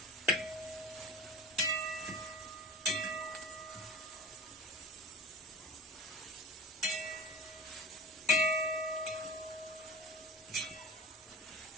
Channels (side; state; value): both; normal; correlation 0.34